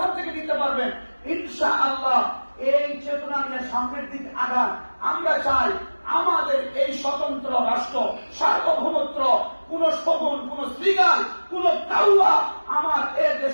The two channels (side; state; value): both; inverted; correlation -1.00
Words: থেকে নিতে পারবেন ইনশাআল্লাহ। এই চেতনা নিয়ে সামনের দিক আগান। আমরা চাই আমাদের এই স্বতন্ত্র রাষ্ট্র, সার্বভৌমত্ব, কোন শগুন, কোন শ্রীগাল, কোন কাউয়া আমার এ